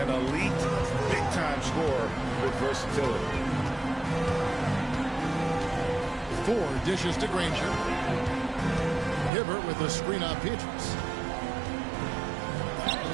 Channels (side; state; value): left; drops out; at 9.3 s